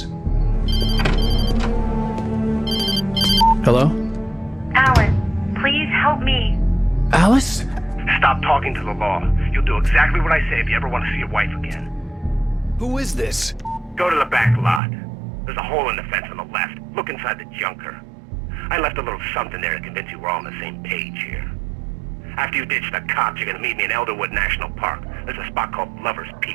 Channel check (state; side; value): drops out; left; at 14.8 s